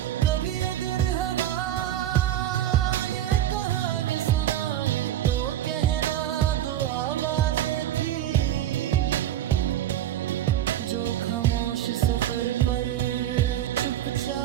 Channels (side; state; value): left; quieter; 12.2 dB